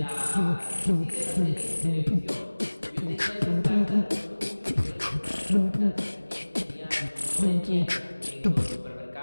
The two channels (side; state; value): both; inverted; correlation -1.00